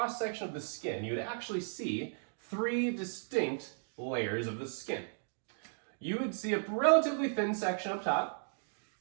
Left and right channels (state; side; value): silent; left; digital silence